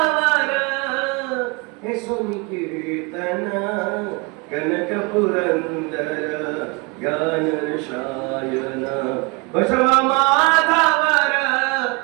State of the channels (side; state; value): left; quieter; 29.2 dB